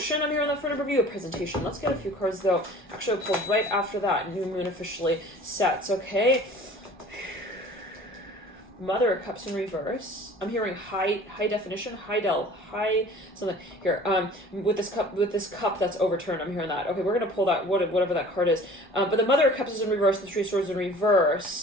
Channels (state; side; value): normal; both; correlation 0.46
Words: I'm hearing that for a number of you, a presentation. Let's get a few cards though. Actually, I'll pull right after that. New moon officially sets, okay? Mother of Cups in reverse. I'm hearing high definition, high something here. With this cup that's overturned. I'm hearing that. Okay, we're gonna pull that whatever that card is. But the Mother of Cups is in reverse. The Three of Swords in